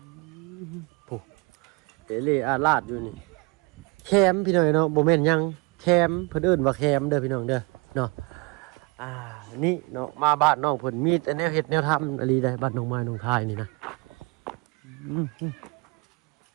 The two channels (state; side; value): quieter; left; 29.5 dB